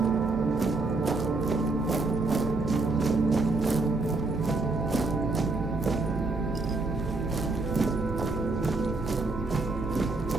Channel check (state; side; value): quieter; left; 3.4 dB